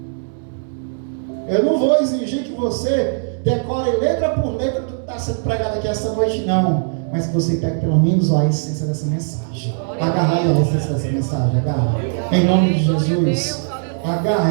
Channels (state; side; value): silent; left; digital silence